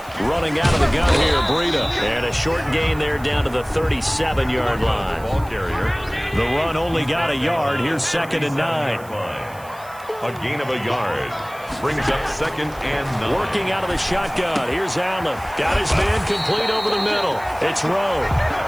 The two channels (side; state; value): right; noise; hiss, 22 dB below the sound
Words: Running out of the gun here, Breida. And a short gain there down to the 37-yard line. Ball carrier. The run only got a yard. Here's 2nd and 9. A gain of a yard. Brings up 2nd and 9. Working out of the shotgun. Here's Allen. Got his man complete over the middle. It's Rowe.